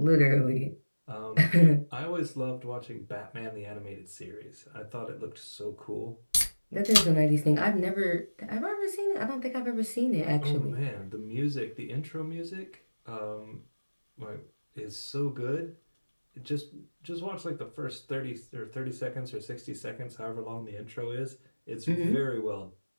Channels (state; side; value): inverted; both; correlation -1.00